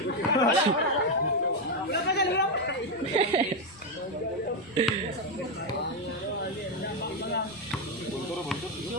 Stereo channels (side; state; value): left; noise; rumble, 27 dB below the sound